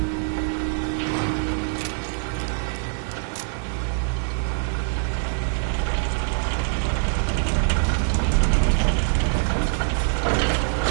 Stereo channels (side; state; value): left; silent; 63 dB below the other